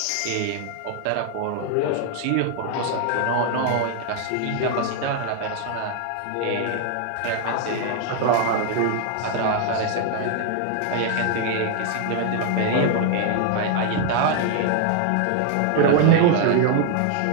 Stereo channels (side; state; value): both; different; correlation 0.00